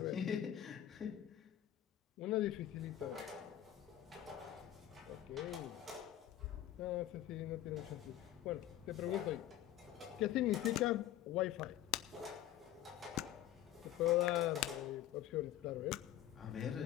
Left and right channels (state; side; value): quieter; right; 12.5 dB